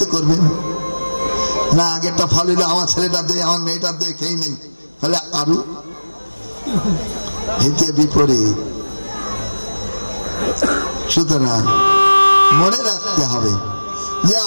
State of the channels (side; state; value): both; inverted; correlation -1.00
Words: করবেন না। আগেরটা ফল হইলে আমার ছেলেটা দে, আমার মেয়েটা দে, খেয়ে নেই, তাহলে আরো হিতে বিপরীত। সুতরাং মনে রাখতে হবে যে